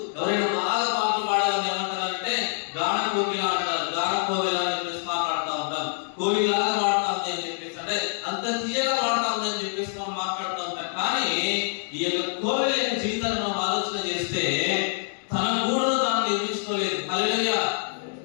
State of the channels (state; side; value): silent; right; 61 dB below the other